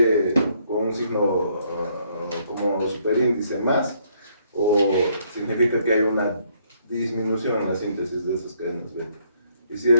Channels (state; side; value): inverted; both; correlation -0.69